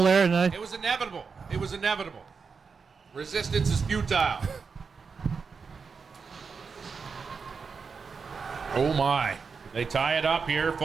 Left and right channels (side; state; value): left; quieter; 5.4 dB